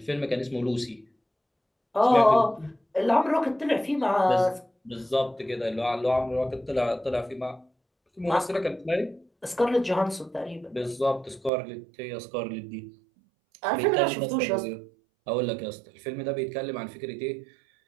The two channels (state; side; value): drops out; left; at 11.5 s